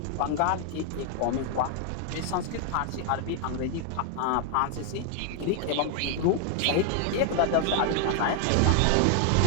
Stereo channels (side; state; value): both; different; correlation 0.00